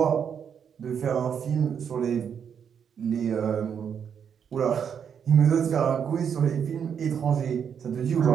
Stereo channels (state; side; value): quieter; left; 7.6 dB